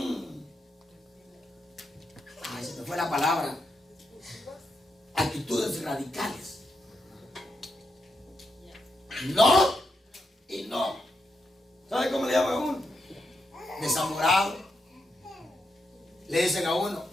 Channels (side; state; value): both; normal; correlation 0.84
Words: se me fue la palabra, actitudes radicales. No y no. ¿Sabe cómo le llaman a uno? Desamorado. Le dicen a uno,